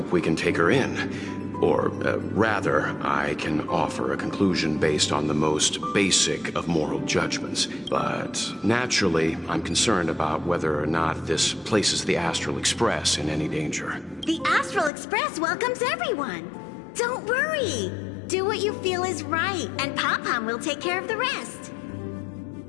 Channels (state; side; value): drops out; right; at 14.9 s